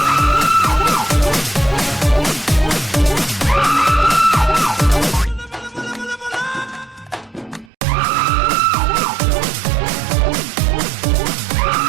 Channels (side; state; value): left; drops out; at 7.7 s